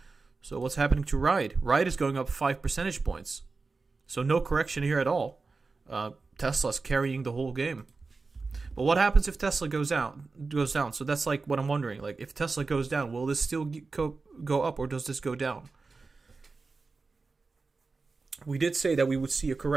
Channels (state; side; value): quieter; left; 4.1 dB